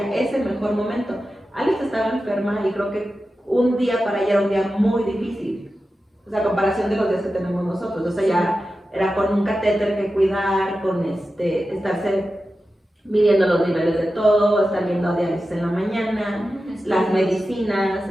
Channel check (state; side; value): normal; both; correlation 0.92